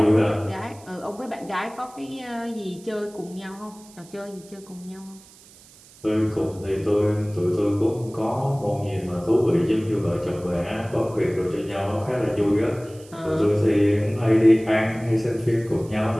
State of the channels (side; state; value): right; noise; hiss, 24 dB below the sound